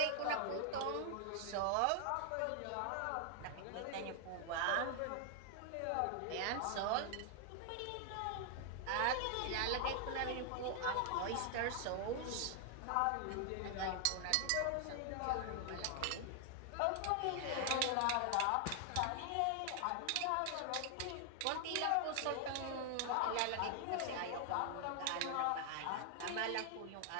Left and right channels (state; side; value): different; both; correlation 0.00